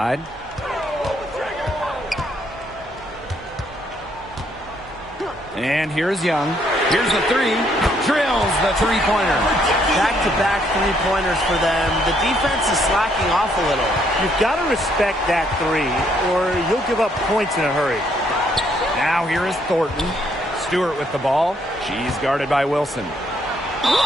And here's Young. Here's the 3. Drills the 3-pointer. Back-to-back 3-pointers for them. The defense is slacking off a little. You've got to respect that 3, or you'll give up points in a hurry. Now here is Thornton. Stewart with the ball. She's guarded by Wilson.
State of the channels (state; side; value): normal; both; correlation 0.70